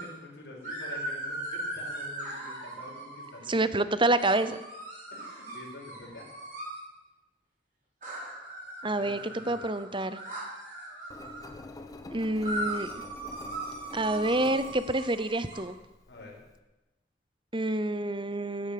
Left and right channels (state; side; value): normal; both; correlation 0.35